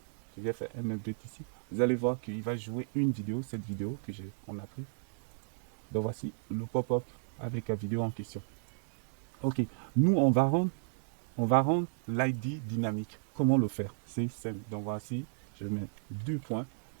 Je vais faire un update ici. Vous allez voir qu'il va jouer une vidéo, cette vidéo que on a pris. Donc voici le pop-up avec la vidéo en question. Ok, nous on va rendre l'ID dynamique. Comment le faire? C'est simple. Donc voici, je mets 2 points.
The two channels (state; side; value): silent; left; digital silence